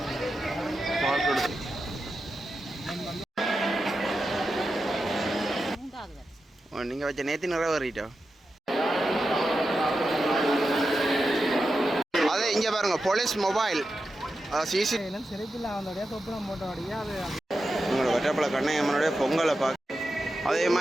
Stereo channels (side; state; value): both; normal; correlation 0.90